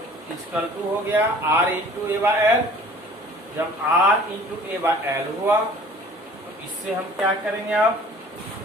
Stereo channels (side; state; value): both; normal; correlation 0.49